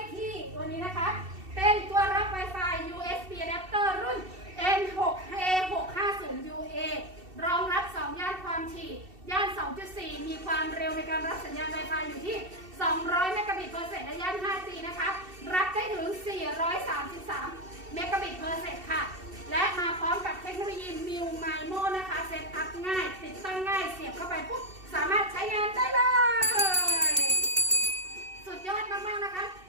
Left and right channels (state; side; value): late; left; 2.7 ms